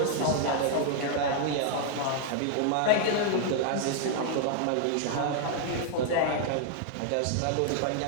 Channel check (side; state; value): both; different; correlation 0.00